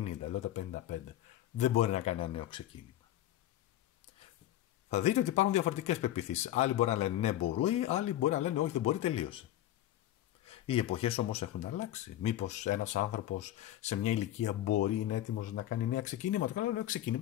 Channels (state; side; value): quieter; right; 13.4 dB